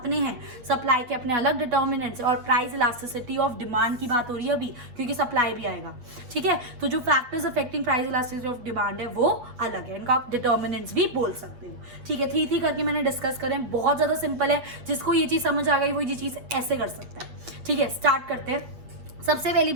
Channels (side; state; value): left; late; 8.1 ms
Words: हैं, सप्लाई के अपने अलग डिटर्मिनेंट्स, और प्राइस इलास्टिसिटी ऑफ डिमांड की बात हो रही है अभी क्योंकि सप्लाई भी आएगा, ठीक है। तो जो factors affecting price elasticity of demand है वो अलग है, इनका आप डिटर्मिनेंट्स भी बोल सकते हो, ठीक है। 3 करके मैंने डिस्कस करें, बहुत ज्यादा सिंपल है, जिसको ये चीज समझ आ गई वो ये चीज ऐसे कर सकता है, ठीक है। स्टार्ट करते हैं। सबसे पहली